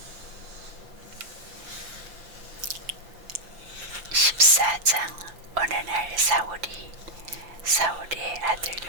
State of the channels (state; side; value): late; left; 5.7 ms